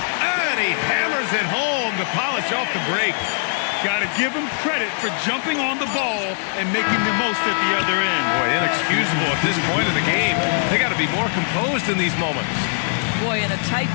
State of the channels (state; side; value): silent; right; digital silence